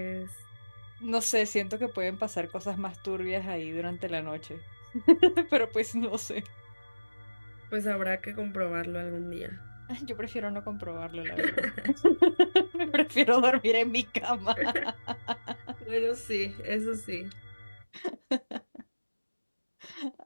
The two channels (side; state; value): both; inverted; correlation -1.00